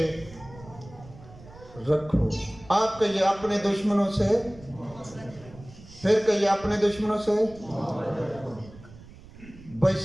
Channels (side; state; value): right; noise; rumble, 20 dB below the sound